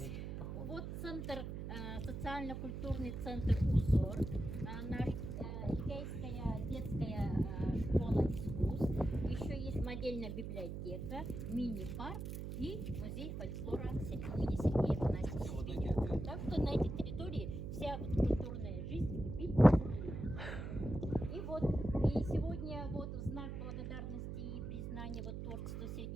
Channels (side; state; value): right; noise; hum, 6 dB below the sound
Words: вот центр, социально-культурный центр «Узор», наш Эдгейская детская школа искусств, еще есть модельная библиотека, мини-парк и музей фольклора имени Сергея Афанасьевича Зверева. Так что на этой территории вся вот культурная жизнь кипит. И вот и сегодня вот в знак благодарности и признания вот творчеству